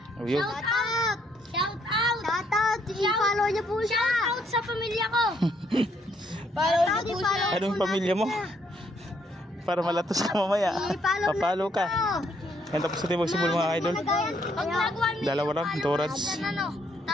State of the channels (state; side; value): normal; both; correlation 0.71